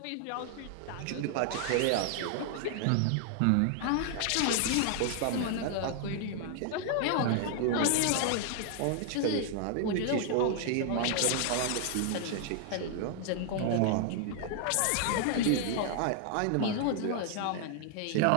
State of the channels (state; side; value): different; both; correlation 0.00